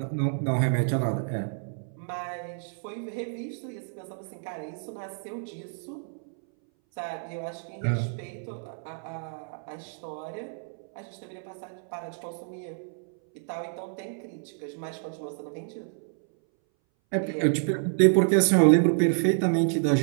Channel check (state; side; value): silent; left; 59 dB below the other